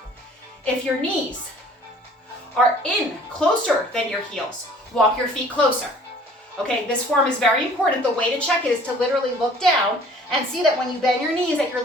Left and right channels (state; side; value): normal; both; correlation 0.52